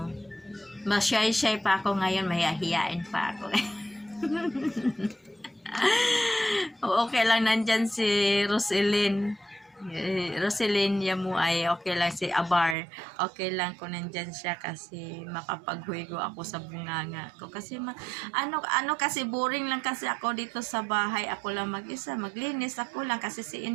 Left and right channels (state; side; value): drops out; left; at 12.8 s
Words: Mashy-shy pa ako ngayon, mahihiyain pa ako. Okay lang, nandyan si Roselyn Yamu ay okay lang, si Abar okay lang kung nandyan siya kasi makapaghuigo ako sa bunganga ko kasi kasi boring lang kasi ako dito sa bahay, ako lang mag-isa, maglinis ako lang kasi si